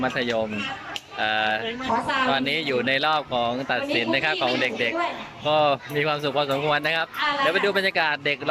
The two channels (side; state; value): both; identical; correlation 1.00